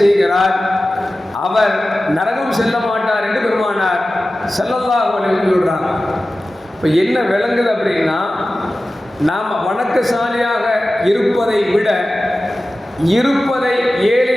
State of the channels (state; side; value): normal; both; correlation 0.95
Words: அவர் நரகம் செல்ல மாட்டார் என்று பெருமானார் ஸல்லல்லாஹு அலைஹி வஸல்லம் சொல்றாங்க. இப்போ என்ன விளங்குது அப்படின்னா, நாம் வணக்கசாலியாக இருப்பதை விட இருப்பதை